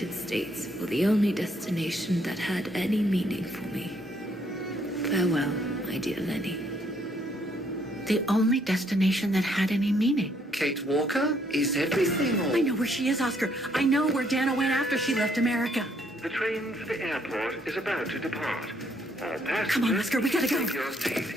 States for the only destination that had any meaning for me. Farewell, my dear Lenny. The only destination that had any meaning. Kate Walker? Is everything all... I know where she is, Oscar. I know where Dana went after she left America. The train for the airport is about to depart. All passengers, Come on, Oscar, we gotta go. take your seat.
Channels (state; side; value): normal; both; correlation 0.69